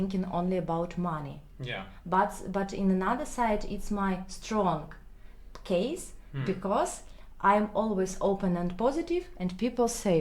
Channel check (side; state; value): both; identical; correlation 1.00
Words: only about money. But in another side, it's my strong case, because I'm always open and positive, and people